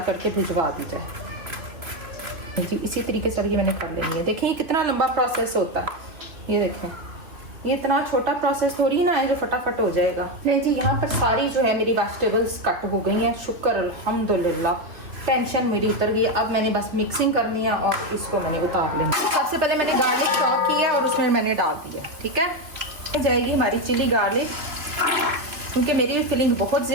करके भिजवा दी जाए जी। इसी तरीके से ये मैंने कर लेनी है। देखिए कितना लंबा प्रोसेस होता है, ये देखें, ये इतना छोटा प्रोसेस थोड़ी ना है जो फटाफट हो जाएगा। नहीं जी, यहाँ पर सारी जो है मेरी वेजिटेबल्स कट हो गई हैं, शुक्र अल्हम्दुलिल्लाह, टेंशन मेरी उतर गई। अब मैंने बस मिक्सिंग करनी है और इसको मैंने उतार लेना। सबसे पहले मैंने गार्लिक चॉप किया और उसमें मैंने डाल दिया। ठीक है, जाएगी हमारी चिली गार्लिक, क्योंकि मेरी फिलिंग बहुत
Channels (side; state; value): left; late; 3.2 ms